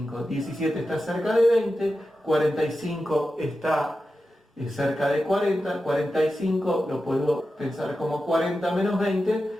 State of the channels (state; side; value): normal; both; correlation 0.91